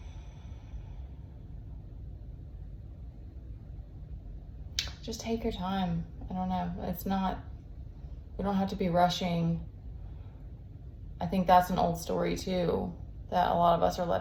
Just take your time. I don't know. We don't have to be rushing. I think that's an old story too, that a lot of us are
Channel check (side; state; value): both; identical; correlation 1.00